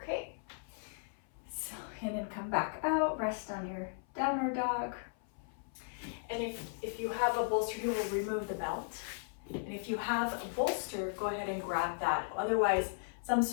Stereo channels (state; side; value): silent; right; 54 dB below the other